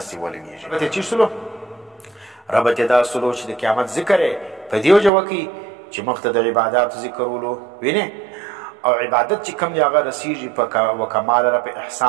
ولګېږي. ربط یې چی سلو؟ ربط یې دا سلو چې د قیامت ذکر یې په دې وجه وکړي چې مخته د عباداتو ذکرولو وینې، او عبادت چې کوم دی هغه رسیږي په کمال را په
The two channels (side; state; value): left; drops out; at 5.1 s